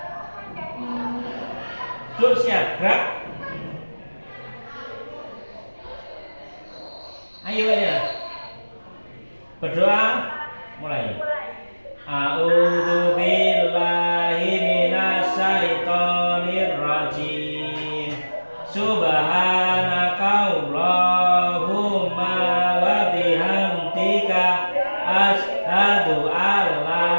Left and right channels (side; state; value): both; inverted; correlation -1.00